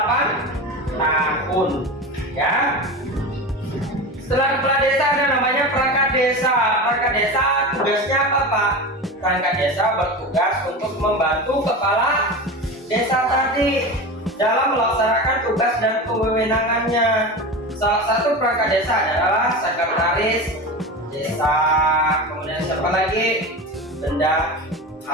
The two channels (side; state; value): both; normal; correlation 0.26